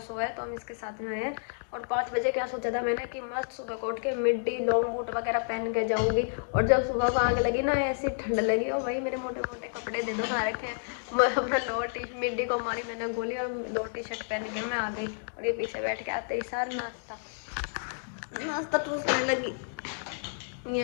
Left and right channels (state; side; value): silent; right; digital silence